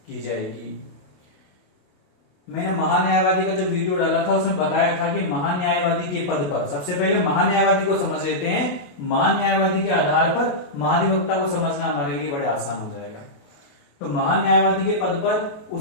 की जाएगी। मैंने महान्यायवादी का जो वीडियो डाला था उसमें बताया था कि महान्यायवादी के पद पर, सबसे पहले महान्यायवादी को समझ लेते हैं, महान्यायवादी के आधार पर महाधिवक्ता को समझना हमारे लिए बड़े आसान हो जाएगा। तो महान्यायवादी के पद पर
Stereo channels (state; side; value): late; right; 28 ms